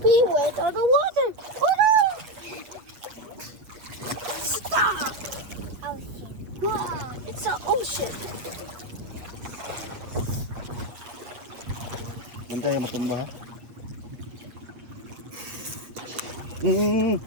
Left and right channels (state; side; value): late; left; 8.3 ms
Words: went on the water. Oh no! Stop! Ocean. Wow, it's an ocean. Antay matumba ha.